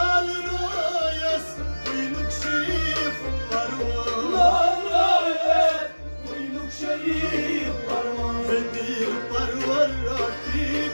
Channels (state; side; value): inverted; both; correlation -1.00